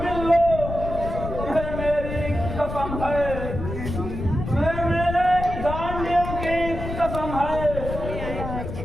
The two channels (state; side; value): noise; left; rumble, 6 dB below the sound